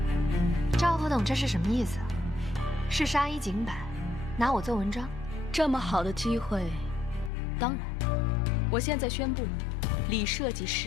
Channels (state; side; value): drops out; right; at 7.3 s